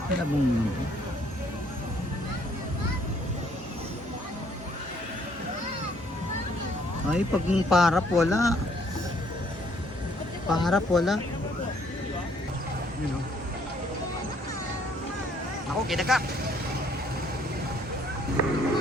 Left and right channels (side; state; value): both; normal; correlation 0.64